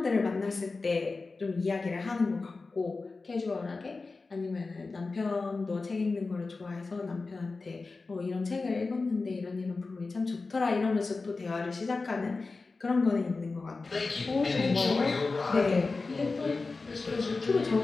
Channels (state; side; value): quieter; right; 3.9 dB